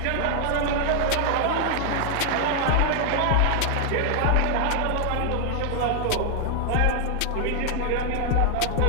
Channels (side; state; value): both; different; correlation 0.00